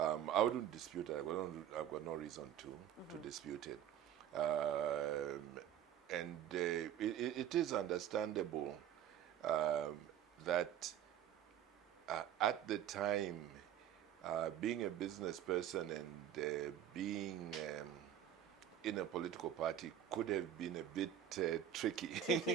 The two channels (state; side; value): quieter; left; 10.2 dB